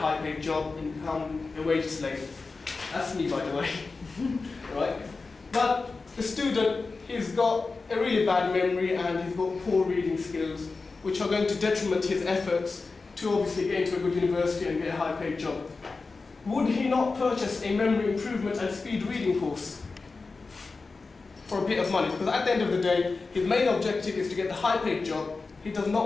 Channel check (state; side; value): quieter; right; 4.0 dB